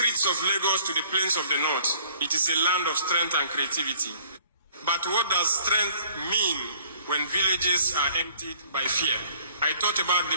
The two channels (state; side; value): inverted; both; correlation -0.57